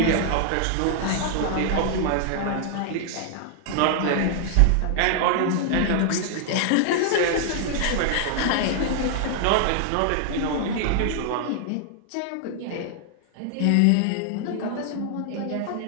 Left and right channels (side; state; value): both; different; correlation 0.00